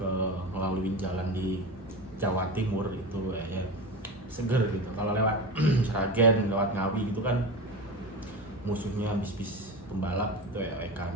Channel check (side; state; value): both; normal; correlation 0.25